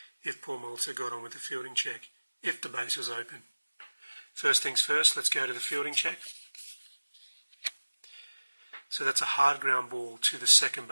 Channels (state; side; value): inverted; both; correlation -1.00